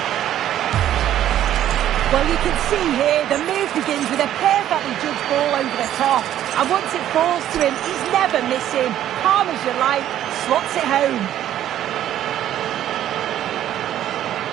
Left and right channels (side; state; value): left; quieter; 11.7 dB